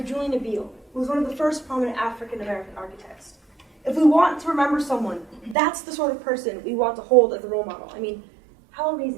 Julian Abele, who was one of the first prominent African-American architects. If we want to remember someone, that's the sort of person we want to hold as a role model. I mean, how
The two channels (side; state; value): left; drops out; at 5.6 s